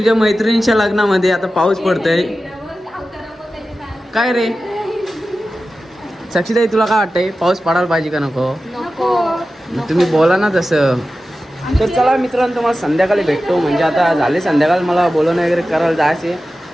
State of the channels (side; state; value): both; normal; correlation 0.94